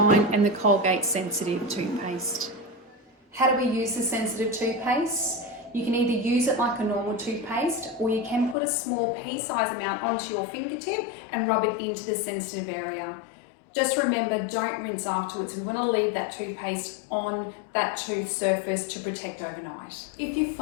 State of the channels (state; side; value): drops out; right; at 8.6 s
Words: and the Colgate Sensitive toothpaste. How do we use the sensitive toothpaste? You can either use it like a normal toothpaste, or you can put a small pea-sized amount onto your fingertip and rub it into the sensitive area. Just remember, don't rinse afterwards. We want to leave that toothpaste on that tooth surface to protect overnight. If you